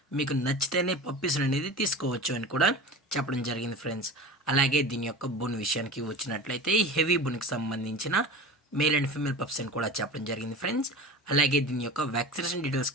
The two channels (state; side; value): normal; both; correlation 0.33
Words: మీకు నచ్చితేనే పప్పీస్ని అనేది తీసుకోవచ్చు అని కూడా చెప్పడం జరిగింది ఫ్రెండ్స్. అలాగే దీని యొక్క బోన్ విషయానికి వచ్చినట్లయితే హెవీ బోన్కి సంబంధించిన మేల్ అండ్ ఫీమేల్ పప్స్ అని కూడా చెప్పడం జరిగింది ఫ్రెండ్స్. అలాగే దీని యొక్క వ్యాక్సినేషన్